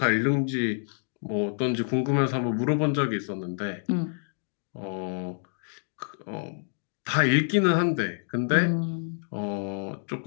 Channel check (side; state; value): right; silent; digital silence